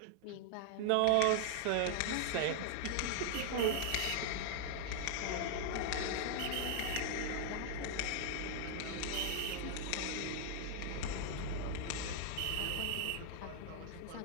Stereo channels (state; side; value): different; both; correlation 0.00